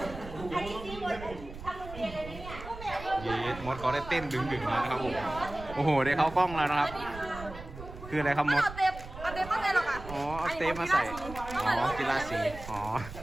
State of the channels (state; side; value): noise; right; rumble, 13 dB below the sound